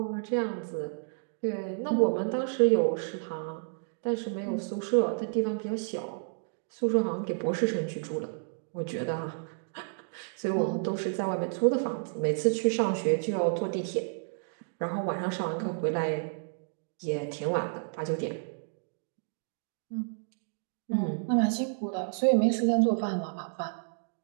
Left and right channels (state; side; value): silent; left; digital silence